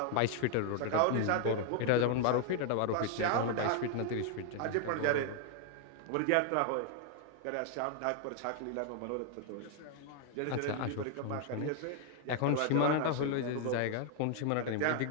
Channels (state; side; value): different; both; correlation 0.00